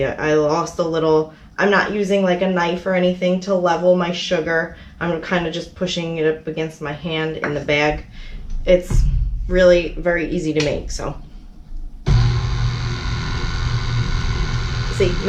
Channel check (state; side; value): identical; both; correlation 1.00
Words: I lost a little. I'm not using like a knife or anything to level my sugar. I'm kind of just pushing it up against my hand in the bag. It's really very easy to make, so. See,